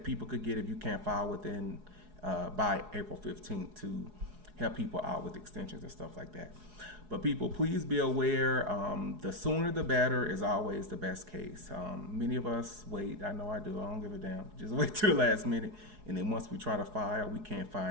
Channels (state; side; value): late; left; 4.8 ms